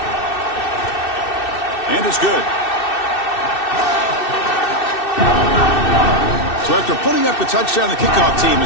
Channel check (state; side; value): late; right; 2.6 ms